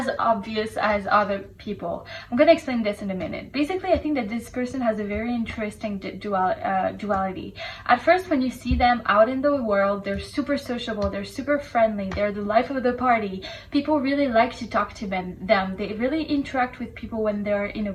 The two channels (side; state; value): both; identical; correlation 1.00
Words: obvious as other people. I'm gonna explain this in a minute. Basically, I think that this person has a very interesting duality. At first, when you see them out in the world, they're super sociable, they're super friendly, they're the life of the party. People really like to talk to them. They really interact with people when they're in a